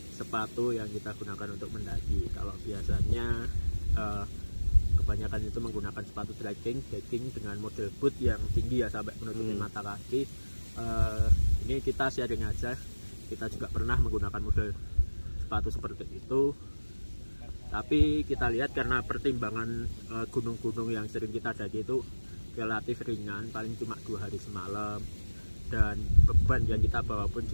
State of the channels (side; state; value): both; inverted; correlation -1.00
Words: sepatu yang kita gunakan untuk mendaki. Kalau biasanya kebanyakan itu menggunakan sepatu trekking dengan model boot yang tinggi ya, sampai menutupi mata kaki. Ini kita sharing aja, kita juga pernah menggunakan model sepatu seperti itu. Tapi kita lihat karena pertimbangan gunung-gunung yang sering kita daki itu relatif ringan, paling cuma 2 hari semalam, dan beban yang kita bawa pun